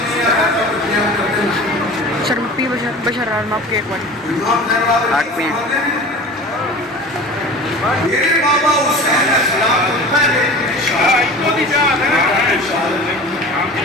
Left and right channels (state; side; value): normal; both; correlation 0.37